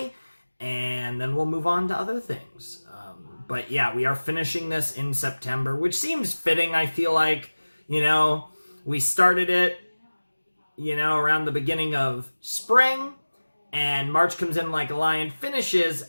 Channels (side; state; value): both; inverted; correlation -1.00